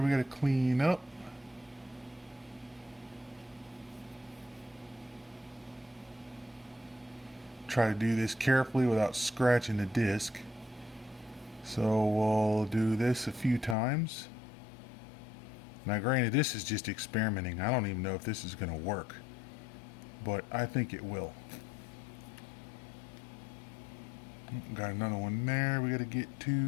we got to clean up. Try to do this carefully without scratching the disc. So we'll do this a few times. Now granted, this is just experimenting. I don't even know if this is going to work, but I think it will. Got another one there we got to get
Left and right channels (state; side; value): drops out; right; at 13.8 s